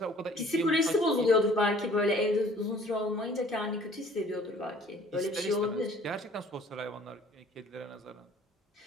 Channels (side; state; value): both; normal; correlation 0.54